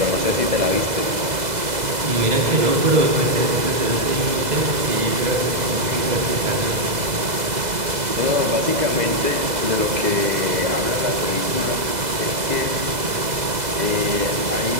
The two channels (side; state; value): left; late; 2.0 ms